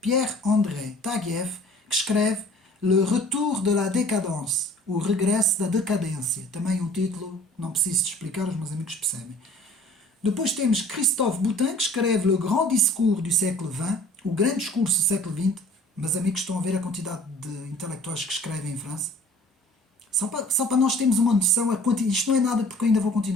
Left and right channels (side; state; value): both; normal; correlation 0.50